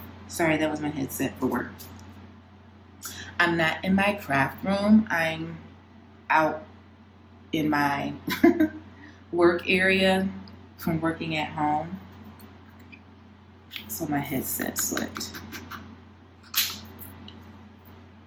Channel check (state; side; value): identical; both; correlation 1.00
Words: Sorry, that was my headset for work. I'm not in my craft room. I'm out in my work area from working at home. So my headset slipped.